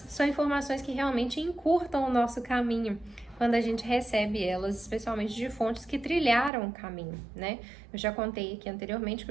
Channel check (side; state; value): left; drops out; at 6.5 s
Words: são informações que realmente encurtam o nosso caminho quando a gente recebe elas, especialmente de fontes que trilharam o caminho, né? Eu já contei aqui anteriormente que